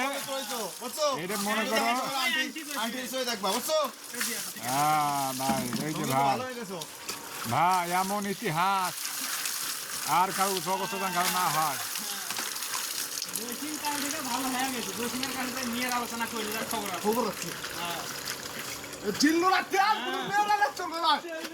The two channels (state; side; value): identical; both; correlation 1.00